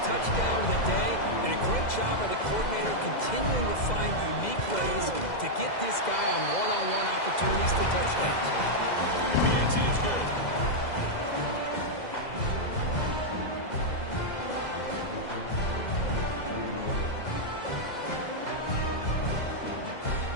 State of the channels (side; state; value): right; late; 2.0 ms